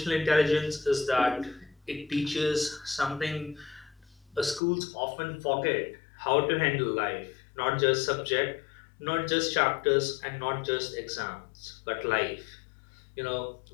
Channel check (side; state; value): right; drops out; at 4.6 s